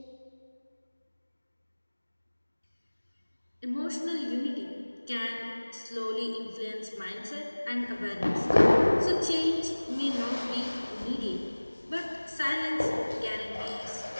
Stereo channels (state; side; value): inverted; both; correlation -1.00